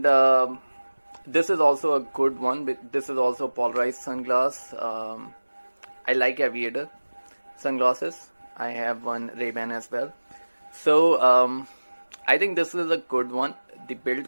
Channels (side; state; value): both; inverted; correlation -1.00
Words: this is also a good one. This is also polarized sunglass. I like Aviator sunglasses. I have one Ray-Ban as well. So I think this is a good one. The